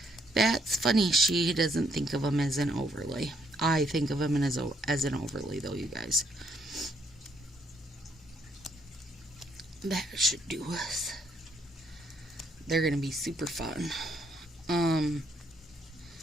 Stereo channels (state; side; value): normal; both; correlation 0.70